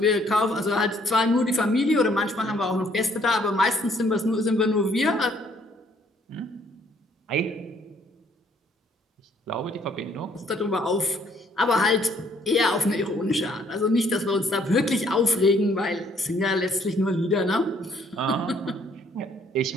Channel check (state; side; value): normal; both; correlation 0.64